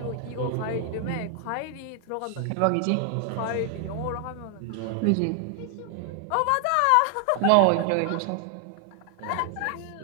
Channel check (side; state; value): both; different; correlation 0.00